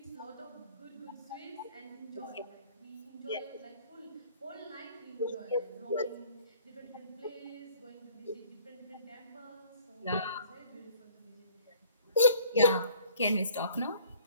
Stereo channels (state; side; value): inverted; both; correlation -0.55